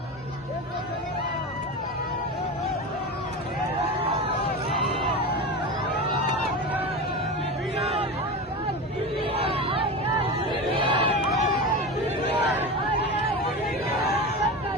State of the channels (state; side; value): normal; both; correlation 0.25